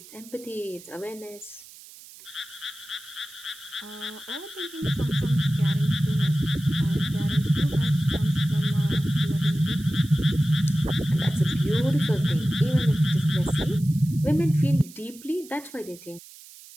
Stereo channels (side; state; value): right; noise; hiss, 20 dB below the sound